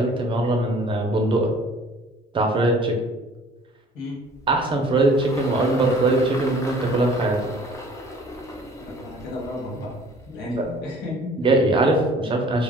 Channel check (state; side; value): normal; both; correlation 0.52